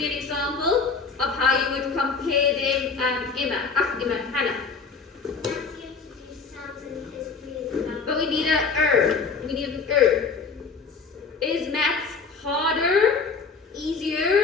an example of how you would compare them, Hannah? But we need we need an Is maths harder,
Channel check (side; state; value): right; quieter; 4.9 dB